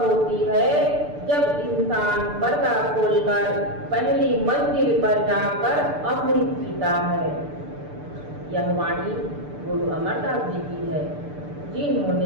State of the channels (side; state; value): left; late; 6.8 ms